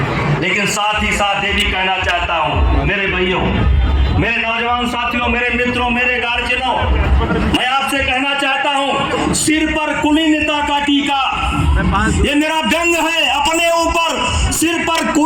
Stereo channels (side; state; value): both; identical; correlation 1.00